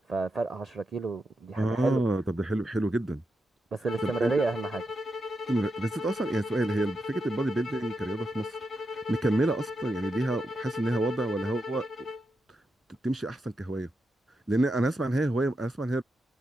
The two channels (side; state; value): both; normal; correlation 0.86